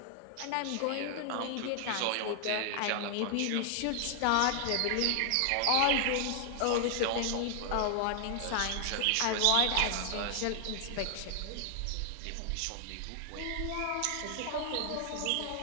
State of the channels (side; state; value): both; different; correlation 0.00